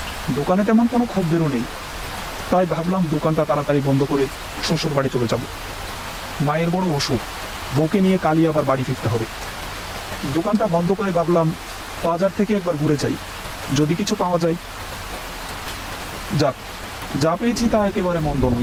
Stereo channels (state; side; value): identical; both; correlation 1.00